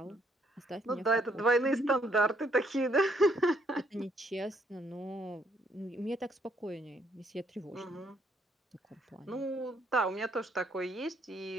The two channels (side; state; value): both; normal; correlation 0.69